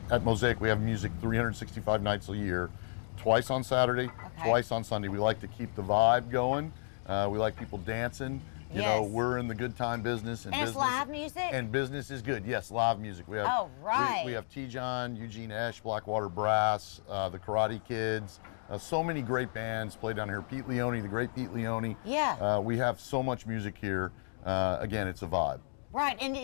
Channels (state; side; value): silent; right; digital silence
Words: at Mosaic we have music 365 nights a year, twice on Saturday, twice on Sunday. We like to keep the vibe going. We like people dancing. You know, we're in the good time business. And it's live music? And business is good. Yes, live music. We have, oh, right. We have T-John, Eugene Esch, Blackwater Brass, the Karate Kids. So many great bands play down here. Pete Leone, the great Pete Leone. Yeah. We have so much music here. Again, it's a vibe. Right, and